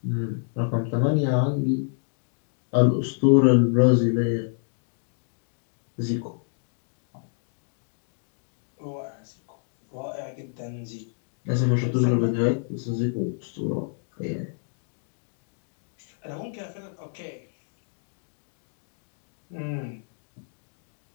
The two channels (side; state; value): right; silent; 59 dB below the other